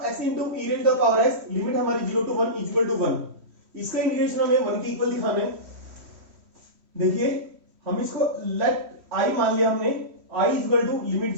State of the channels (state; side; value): late; left; 3.1 ms